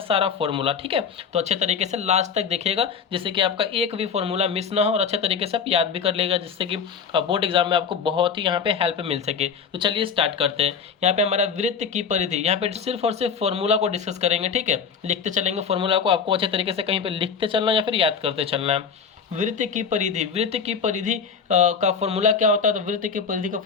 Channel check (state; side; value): quieter; right; 6.3 dB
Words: फॉर्मूला। ठीक है, तो अच्छे तरीके से लास्ट तक देखिएगा जिससे कि आपका एक भी फॉर्मूला मिस ना हो और अच्छे तरीके से आप याद भी कर लेगा, जिससे कि बोर्ड एग्जाम में आपको बहुत ही यहाँ पे हेल्प मिल सके। तो चलिए स्टार्ट करते हैं। यहाँ पे हमारा वृत्त की परिधि, यहाँ पे सिर्फ और सिर्फ फॉर्मूला को डिस्कस करेंगे। ठीक है, लिखते चलेंगे फॉर्मूला को, आपको अच्छे तरीके से कहीं पे लिखते चलना या फिर याद करते चलना है। वृत्त की परिधि, वृत्त की परिधि का फॉर्मूला क्या होता है? तो वृत्त की परिधि का